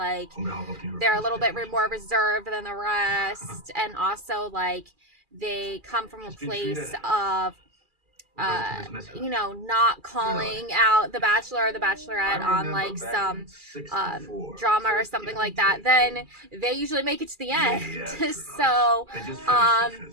they're a little bit more reserved than the rest, and also like they come from a place of not calling out the bachelor or the bachelorette on like some drama or something like that, then they usually make it to the end. So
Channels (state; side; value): late; left; 2.4 ms